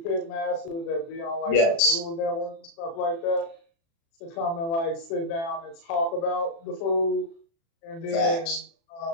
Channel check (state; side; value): late; right; 36 ms